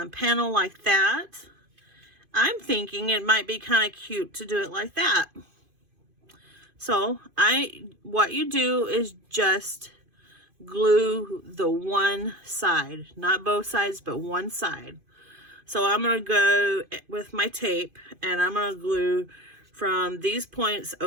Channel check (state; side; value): late; left; 2.5 ms